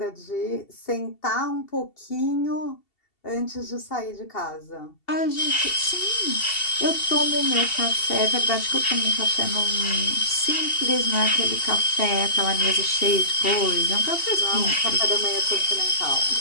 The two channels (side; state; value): right; late; 2.7 ms